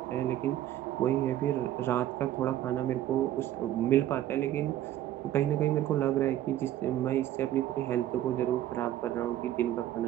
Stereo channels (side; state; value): left; quieter; 12.6 dB